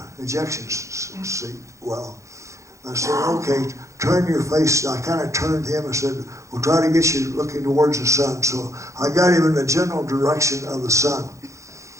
ejection seat well. I said, okay, turn your face. I kind of turned him and said, we'll try to get you looking towards the sun. So I got him in the general direction of the sun.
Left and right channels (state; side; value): late; left; 0.15 ms